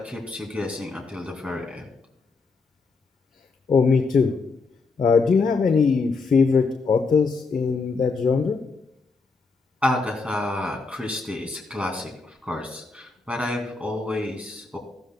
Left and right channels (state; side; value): quieter; right; 4.3 dB